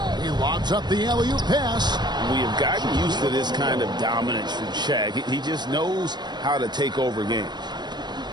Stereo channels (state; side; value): late; left; 0.21 ms